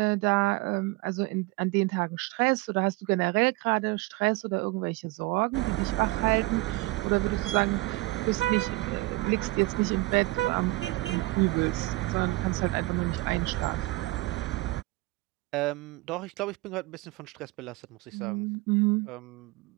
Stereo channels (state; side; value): quieter; left; 21.3 dB